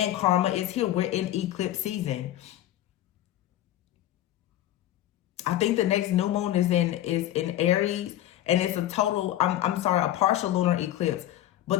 karma is here. We're in eclipse season. I think the next new moon is in Aries, and it's a total, a partial lunar eclipse.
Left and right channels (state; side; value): quieter; right; 13.4 dB